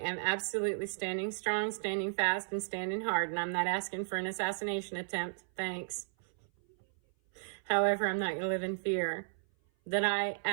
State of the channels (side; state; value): left; silent; 55 dB below the other